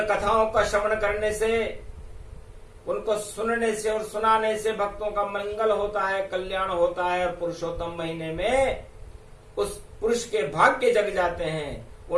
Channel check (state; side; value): identical; both; correlation 1.00